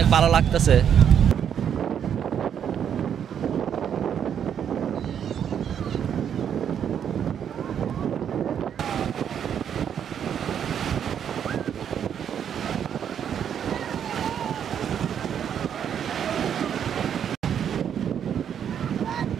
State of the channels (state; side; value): quieter; left; 8.6 dB